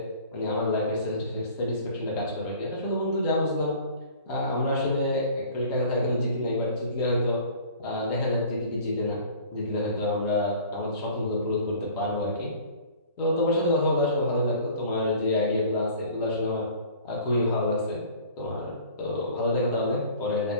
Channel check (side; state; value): both; inverted; correlation -0.47